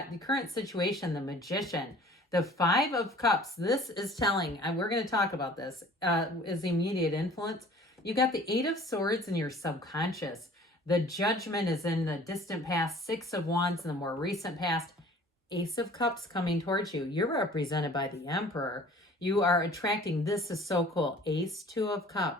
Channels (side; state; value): both; normal; correlation 0.49